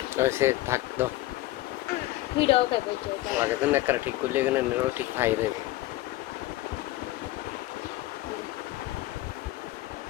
সে থাক দাও ভিডিও খাবে যে লাগে তো না ঠিক করলে এখানে নেরো ঠিক খাই দেবে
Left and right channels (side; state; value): right; quieter; 17.0 dB